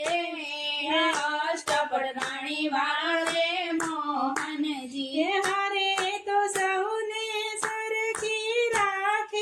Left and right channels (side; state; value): both; identical; correlation 1.00